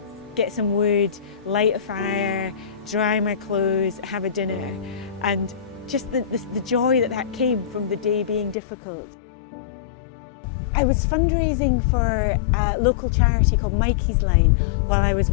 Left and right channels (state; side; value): drops out; right; at 8.6 s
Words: get some wood, light a fire, dry my clothes, have a dinner, and just the joy that came from the day being difficult. I was fundraising for a local charity called Mikey's Line while I was